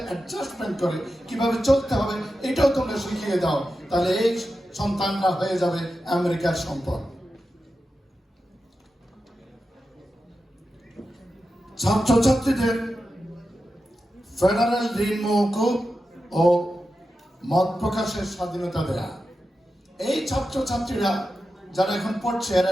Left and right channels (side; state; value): both; normal; correlation 0.91